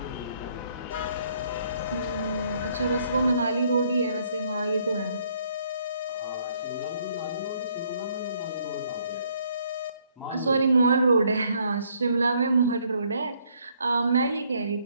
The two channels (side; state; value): both; inverted; correlation -0.67